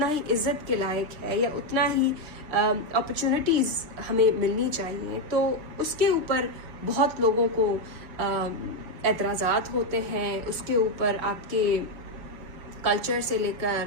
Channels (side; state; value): left; late; 6.6 ms